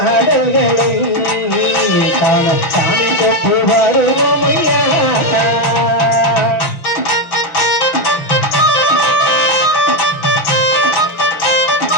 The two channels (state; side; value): late; right; 6.3 ms